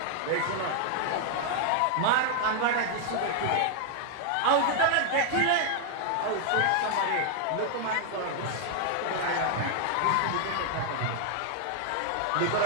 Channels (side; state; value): both; different; correlation 0.00